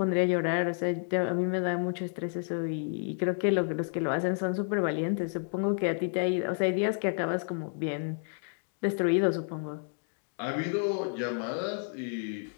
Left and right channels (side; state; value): right; silent; 57 dB below the other